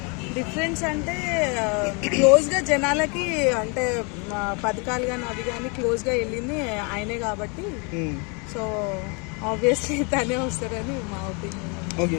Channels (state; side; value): quieter; right; 33.2 dB